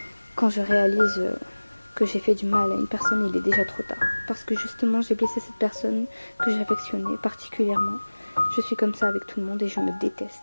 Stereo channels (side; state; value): both; inverted; correlation -1.00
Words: Quand je réalise que j'ai fait du mal à une personne, il est déjà trop tard, parce que justement j'ai blessé cette personne que j'affectionnais particulièrement. Je suis comme ça avec tout le monde et je me